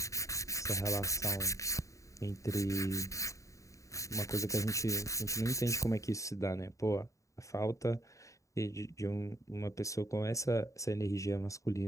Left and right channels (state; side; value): late; right; 0.16 ms